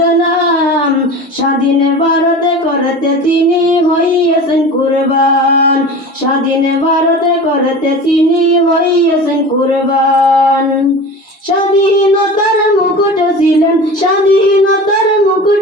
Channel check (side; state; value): both; normal; correlation 0.34